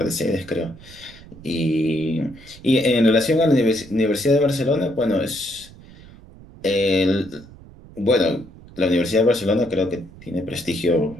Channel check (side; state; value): right; noise; rumble, 20 dB below the sound